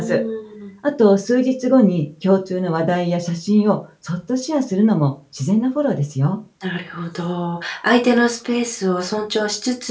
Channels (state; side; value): identical; both; correlation 1.00